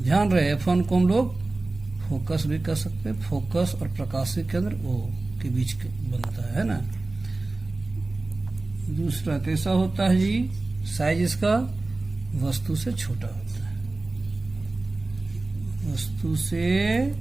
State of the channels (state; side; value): quieter; left; 3.2 dB